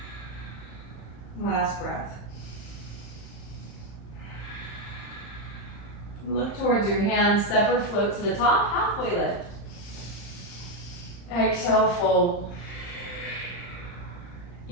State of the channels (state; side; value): late; right; 35 ms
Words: Last breath. Look towards your hands. Step or float to the top. Halfway lift. Exhale, fold.